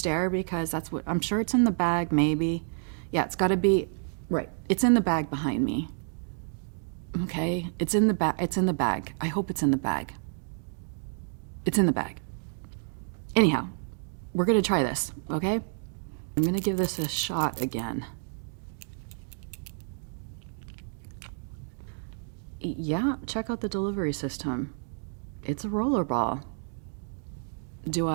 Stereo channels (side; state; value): left; silent; 58 dB below the other